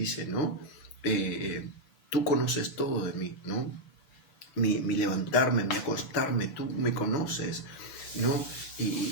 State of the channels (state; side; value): late; right; 7.0 ms